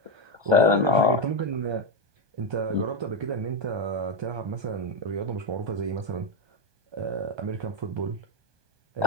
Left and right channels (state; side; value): late; left; 1.2 ms